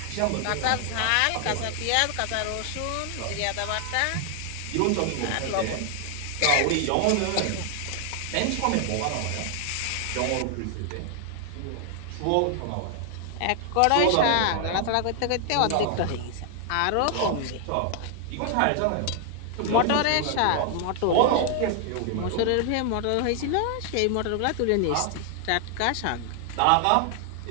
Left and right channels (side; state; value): both; different; correlation 0.00